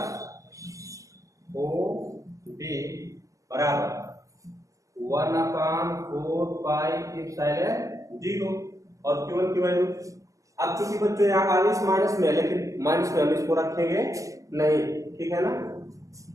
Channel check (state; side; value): late; left; 0.16 ms